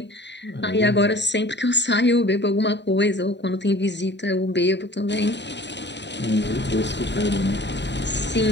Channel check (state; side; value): late; right; 0.51 ms